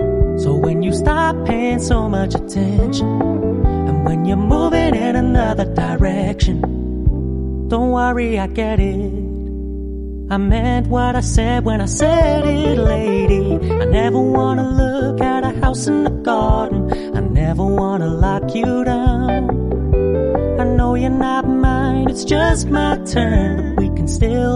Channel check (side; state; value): both; identical; correlation 1.00